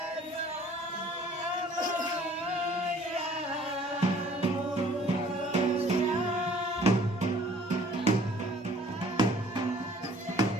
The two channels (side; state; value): both; normal; correlation 0.54